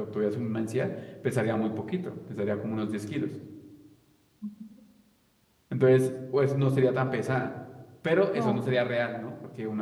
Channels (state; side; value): identical; both; correlation 1.00